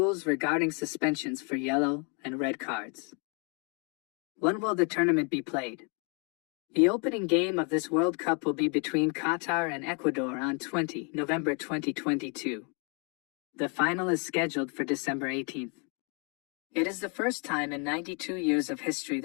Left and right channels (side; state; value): right; quieter; 36.3 dB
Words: regarding suspensions for yellow and red cards. When will the tournament be played? The opening game of this World Cup will be between Qatar and Ecuador on November 2022. The final is scheduled for December 18th. It is the first time in 92 years of history